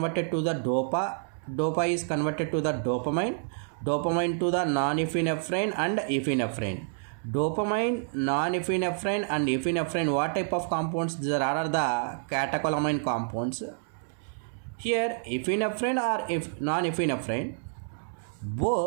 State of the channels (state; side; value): silent; left; 59 dB below the other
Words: to the dopa. Dopa is converted to the dopamine. Dopamine to the non-epinephrine and epinephrine. Dopamine, non-epinephrine and epinephrine, what type of compounds? These are the catecholamine compounds. Here epinephrine or non-epinephrine,